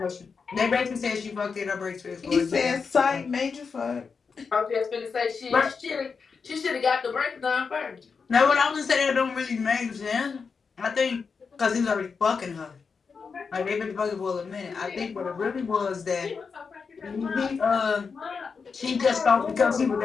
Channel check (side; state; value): right; quieter; 5.4 dB